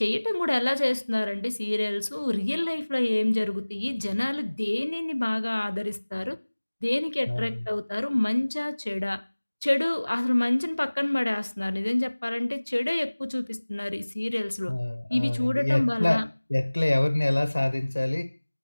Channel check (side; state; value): both; inverted; correlation -1.00